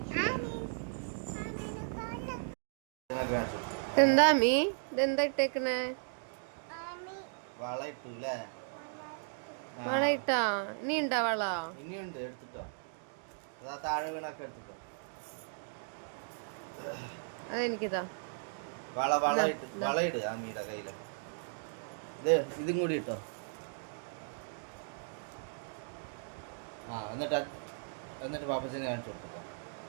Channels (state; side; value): silent; left; digital silence